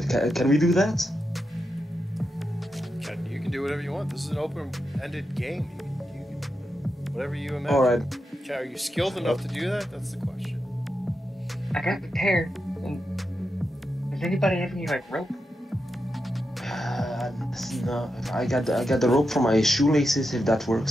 Can we do that? You can do whatever you want. This is an open-ended game. You can whatever you imagine. Alright. Okay, are you skilled enough to do that? That's the question. I got prepared. Does anybody have any like rope? No, I got the rope from my shoelaces, if that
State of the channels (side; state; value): both; normal; correlation 0.87